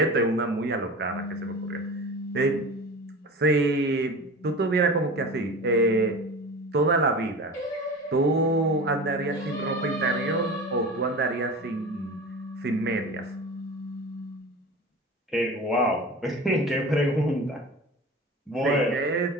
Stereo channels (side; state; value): both; normal; correlation 0.34